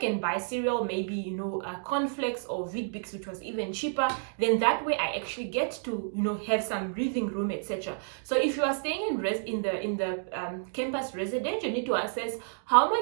buy cereal, maybe cornflakes or Weet-Bix, which was even cheaper. Then that way I actually get to have some breathing room, etc. So if you are staying in the campus residence, you need to assess how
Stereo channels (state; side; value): silent; left; digital silence